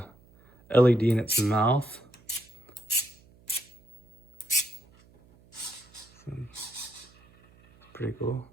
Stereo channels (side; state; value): right; noise; hum, 28 dB below the sound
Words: LED in its mouth. Pretty cool.